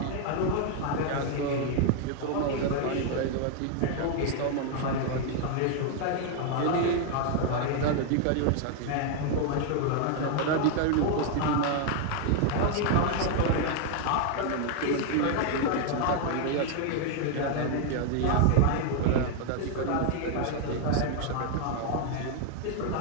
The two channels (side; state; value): both; different; correlation 0.00